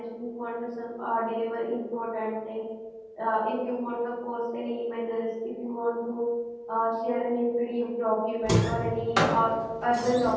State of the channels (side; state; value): both; identical; correlation 1.00